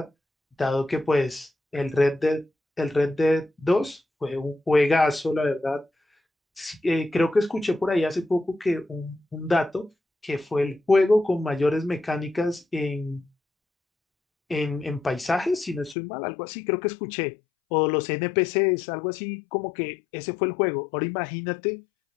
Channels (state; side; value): drops out; right; at 16.0 s